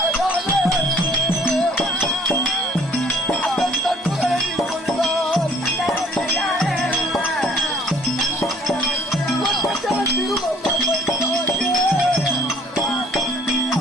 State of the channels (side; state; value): both; normal; correlation 0.57